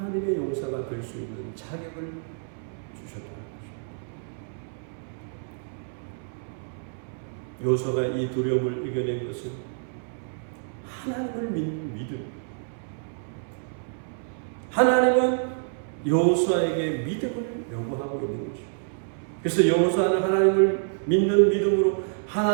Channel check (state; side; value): silent; left; 60 dB below the other